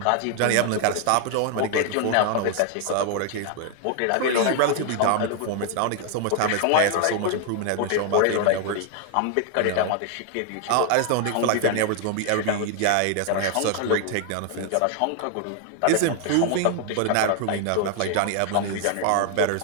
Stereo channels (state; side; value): different; both; correlation 0.00